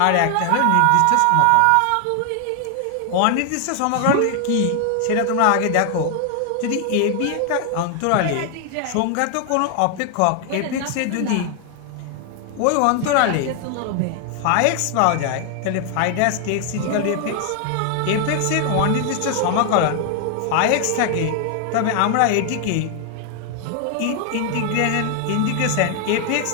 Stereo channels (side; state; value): both; different; correlation 0.00